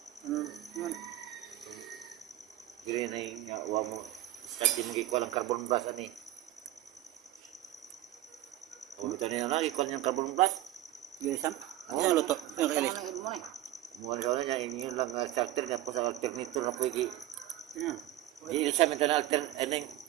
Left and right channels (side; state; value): left; quieter; 14.3 dB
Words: Yan. dili na yung wa mo. Start din gikuha ng carbon brush ani. Oh, bitaw niya na gikuha ng carbon brush. Dili sam. Ano luto? Ano kailan? Muan sa niya inyo lang starter nga po sa alternator na pwede. Yan. Di sa man na alter eneng.